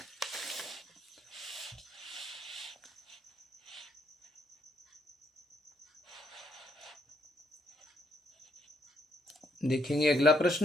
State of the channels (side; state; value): both; normal; correlation 0.73